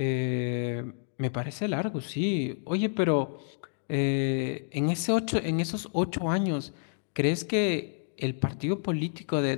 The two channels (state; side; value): silent; right; digital silence